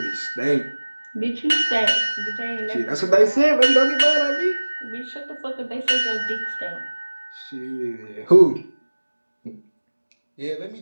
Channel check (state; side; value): inverted; both; correlation -1.00